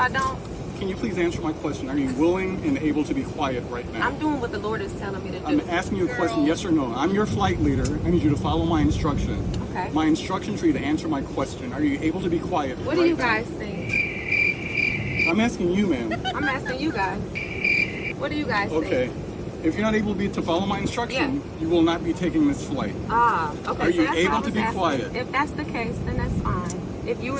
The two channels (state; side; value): identical; both; correlation 1.00